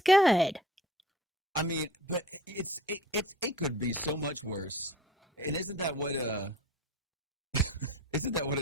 good. I mean, but it could be so much worse. And isn't that what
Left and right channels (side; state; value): both; normal; correlation 0.44